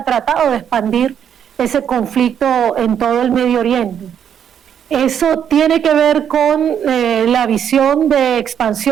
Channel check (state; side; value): quieter; left; 8.7 dB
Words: tratado de expandir ese conflicto en todo el Medio Oriente. ¿Eso tiene que ver con la visión de